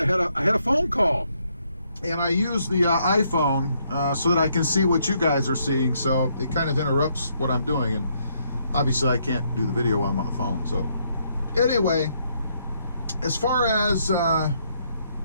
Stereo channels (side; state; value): both; inverted; correlation -0.73